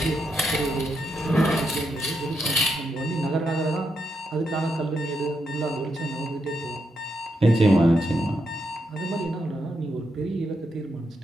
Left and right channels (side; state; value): both; normal; correlation 0.81